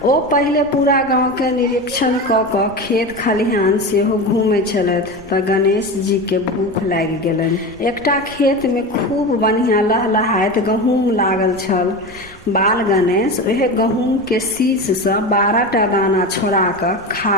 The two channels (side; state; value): right; noise; rumble, 21 dB below the sound